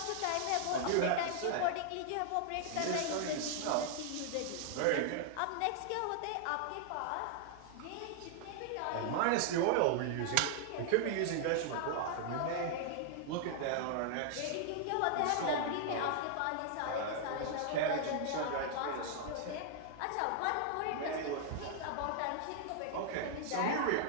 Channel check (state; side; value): different; both; correlation -0.01